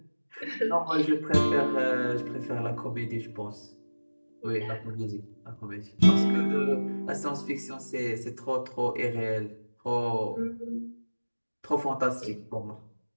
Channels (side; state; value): both; inverted; correlation -1.00